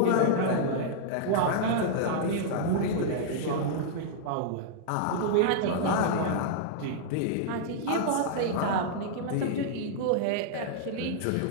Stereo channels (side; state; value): both; different; correlation -0.01